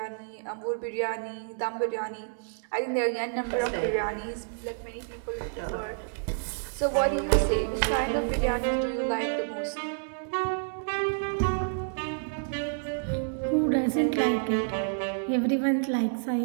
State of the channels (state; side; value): silent; left; digital silence